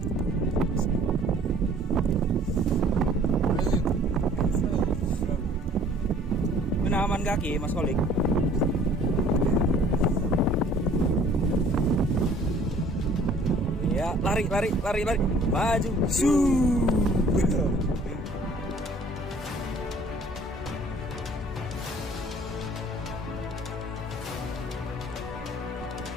aman kaki Mas Kolik. Ya, lari. Maju.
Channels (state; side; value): normal; both; correlation 0.54